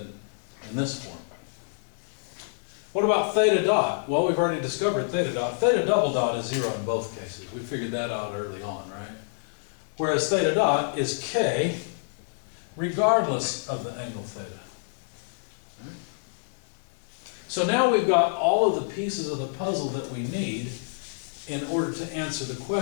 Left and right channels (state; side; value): silent; right; digital silence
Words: in this form. What about theta dot? Well, we've already discovered theta dot. Theta double dot is 0 in both cases. We figured that out early on, right? Whereas theta dot is k regardless of the angle theta. So now we've got all of the pieces of the puzzle that we need in order to answer the